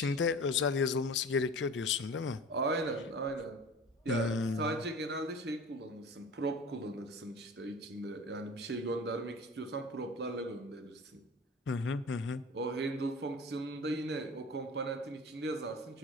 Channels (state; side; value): normal; both; correlation 0.39